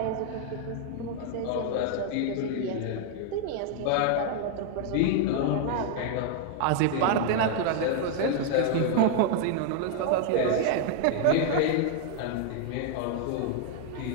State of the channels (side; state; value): both; different; correlation 0.00